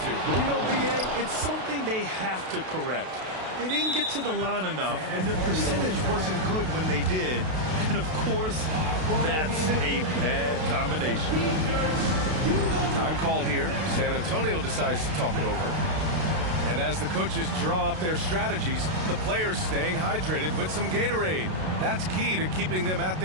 You know, B.A., it's something they have to correct. They didn't get to the line enough, and their percentage wasn't good when they did. And, of course, that's a bad combination. Time called here. San Antonio decides to talk it over. And as the coaches draw up their strategies, the players staying hydrated with some Gatorade. That's key to keeping them at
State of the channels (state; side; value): late; left; 32 ms